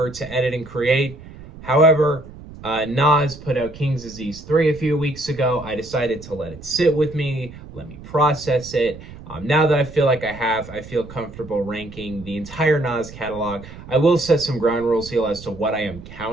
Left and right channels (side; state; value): right; noise; rumble, 16 dB below the sound